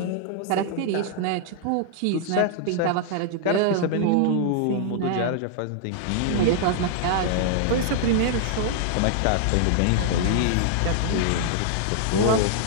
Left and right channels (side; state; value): both; different; correlation -0.01